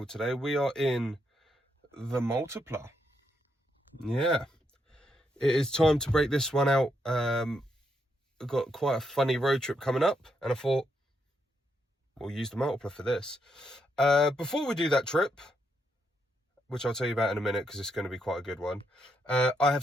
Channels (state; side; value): normal; both; correlation 0.79